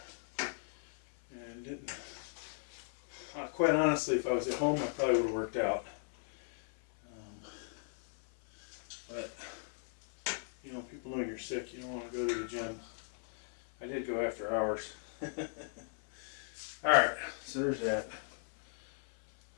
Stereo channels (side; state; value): right; silent; 53 dB below the other